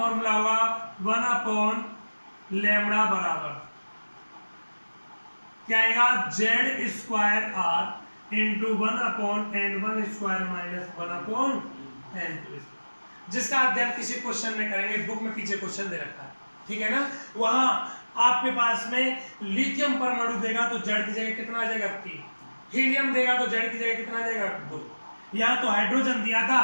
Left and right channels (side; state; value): both; inverted; correlation -1.00